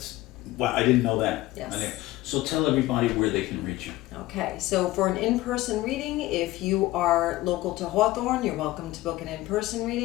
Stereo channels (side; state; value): right; quieter; 17.6 dB